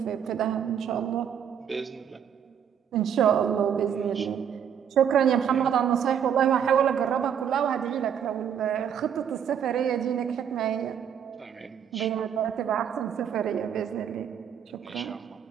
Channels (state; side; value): quieter; left; 8.4 dB